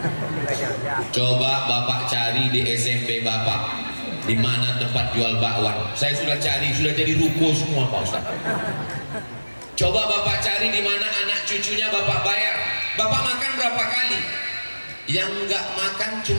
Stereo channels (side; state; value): both; inverted; correlation -1.00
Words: Coba Bapak cari di SMP Bapak, di mana tempat jual bakwan. Saya sudah cari, sudah jadi ruko semua Pak Ustaz. Coba Bapak cari di mana anak cucunya Bapak bayar. Bapak makan berapa kali? Yang nggak makan